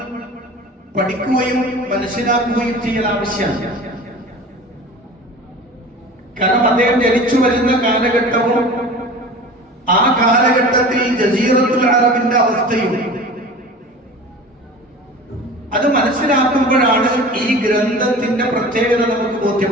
പഠിക്കുകയും മനസ്സിലാക്കുകയും ചെയ്യൽ ആവശ്യമാണ്. കാരണം അദ്ദേഹം ജനിച്ചു വരുന്ന കാലഘട്ടവും ആ കാലഘട്ടത്തിൽ ജസീറത്തുൽ അറബിന്റെ അവസ്ഥയും അത് മനസ്സിലാക്കുമ്പോഴാണ് ഈ ഗ്രന്ഥത്തിന്റെ പ്രത്യേകത നമുക്ക്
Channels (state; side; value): normal; both; correlation 0.38